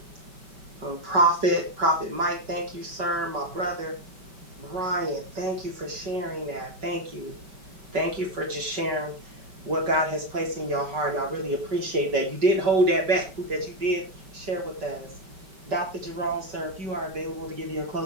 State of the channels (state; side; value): late; left; 5.2 ms